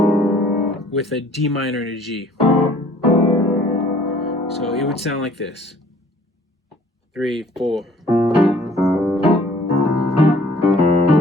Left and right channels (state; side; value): normal; both; correlation 0.56